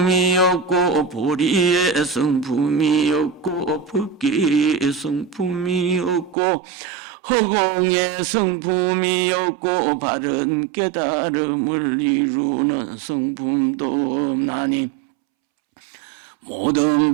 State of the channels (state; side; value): drops out; left; at 6.4 s